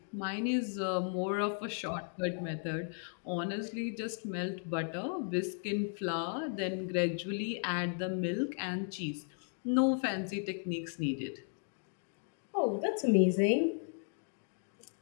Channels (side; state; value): right; silent; 54 dB below the other